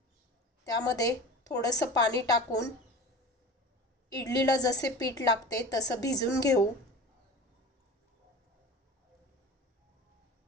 त्यामध्ये थोडंसं पाणी टाकून इडलीला जसे पीठ लागते तसं भिजून घेऊ.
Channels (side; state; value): both; normal; correlation 0.35